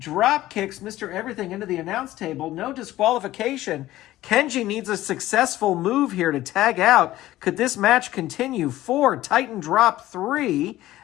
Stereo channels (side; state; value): right; quieter; 15.4 dB